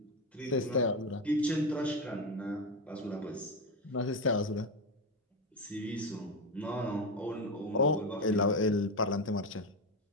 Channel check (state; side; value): normal; both; correlation 0.14